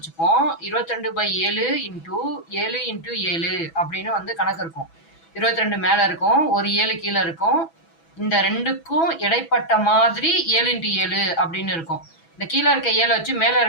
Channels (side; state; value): right; late; 6.1 ms